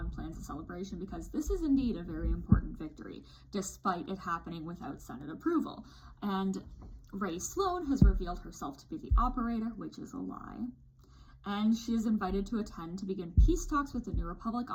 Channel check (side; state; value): both; identical; correlation 1.00